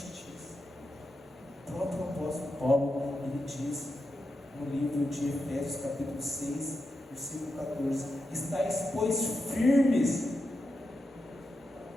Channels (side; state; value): both; normal; correlation 0.87